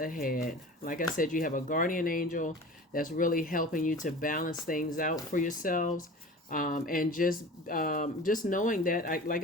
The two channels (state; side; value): normal; both; correlation 0.38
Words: Like I said, you have a guardian angel that's really helping you to balance things out for yourselves. And just knowing that,